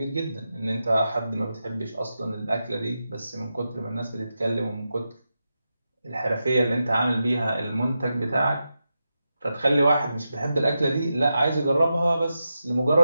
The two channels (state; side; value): inverted; both; correlation -0.89